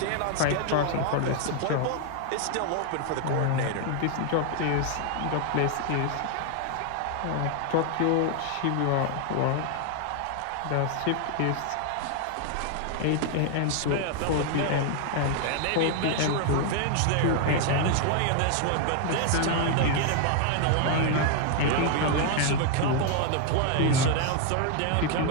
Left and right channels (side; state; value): both; different; correlation 0.00